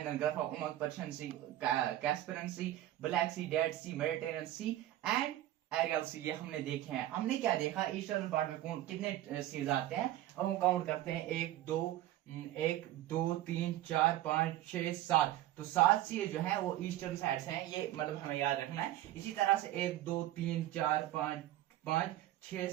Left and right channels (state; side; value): quieter; left; 14.2 dB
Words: Gulf of Oman, Persian Sea, Caspian Sea, Black Sea, Dead Sea, Mediterranean Sea and Aral Sea. ये हमने देखे हैं। हमने क्या देखा, ईस्टर्न पार्ट में कौन कितने सीज आते हैं, अब हम काउंट करते हैं, 1 2 3 4 5 6 7। तो 7 सी जो है वो ईस्टर्न साइड से हैं, ये मतलब हमें याद रखना है। इसी तरह से 1 2 3 4 5 6